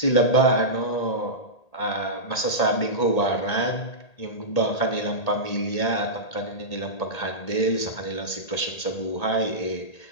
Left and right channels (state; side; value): late; right; 1.8 ms